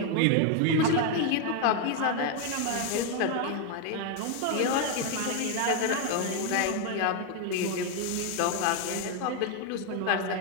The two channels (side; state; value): both; different; correlation 0.01